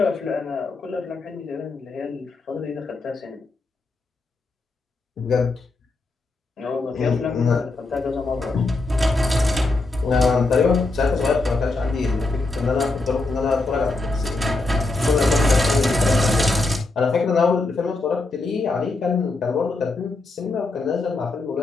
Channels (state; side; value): quieter; right; 3.3 dB